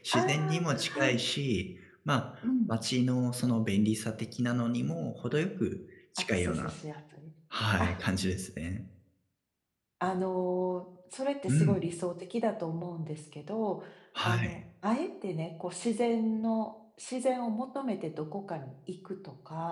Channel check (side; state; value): both; identical; correlation 1.00